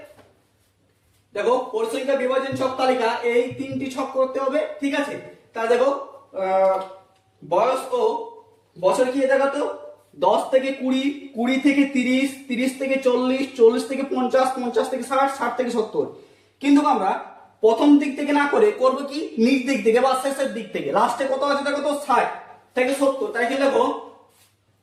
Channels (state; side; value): identical; both; correlation 1.00